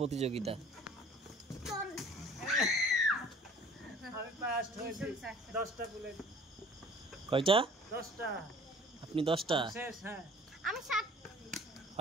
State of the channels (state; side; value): normal; both; correlation 0.49